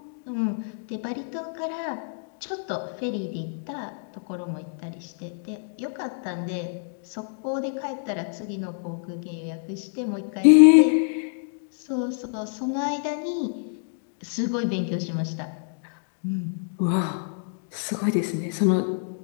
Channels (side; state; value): right; silent; digital silence